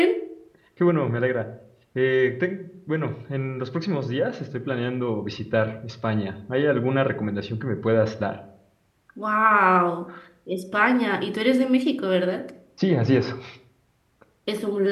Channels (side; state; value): both; identical; correlation 1.00